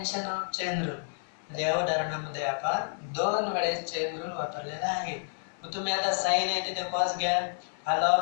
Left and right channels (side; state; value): right; silent; 58 dB below the other